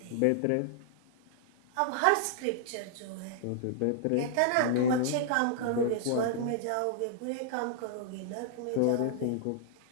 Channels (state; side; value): different; both; correlation -0.01